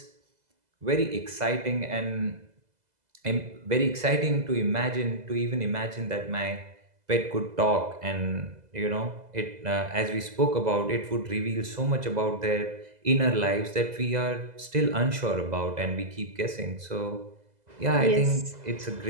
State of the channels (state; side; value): late; left; 2.0 ms